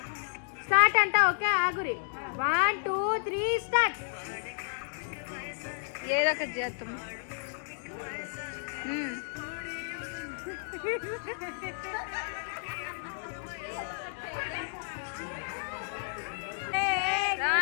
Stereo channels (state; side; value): silent; right; digital silence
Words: స్టార్ట్ అంట. ఓకే ఆగురి. 1 2 3 స్టార్ట్. ఏదో ఒకటి చేద్దాం.